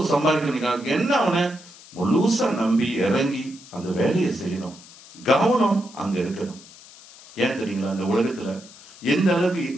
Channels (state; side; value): noise; left; hiss, 21 dB below the sound